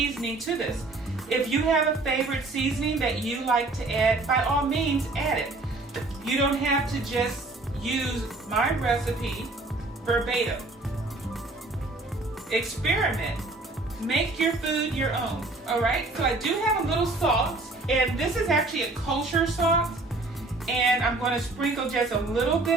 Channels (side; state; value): left; quieter; 3.1 dB